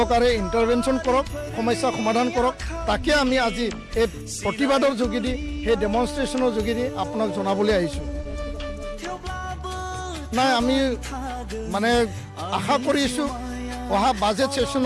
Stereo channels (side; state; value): both; identical; correlation 1.00